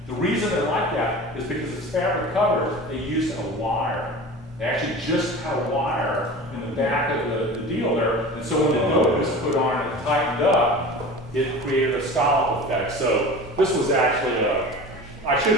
The reason they're like that is because it's fabric covered. They used a wire. They actually just had a wire in the back of the deal there. And so when the nose was put on and it tightened up, it created a scallop effect. So this was actually I should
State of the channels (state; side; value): normal; both; correlation 0.36